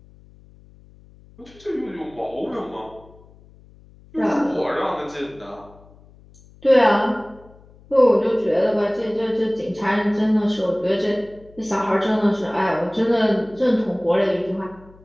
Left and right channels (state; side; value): noise; left; hum, 25 dB below the sound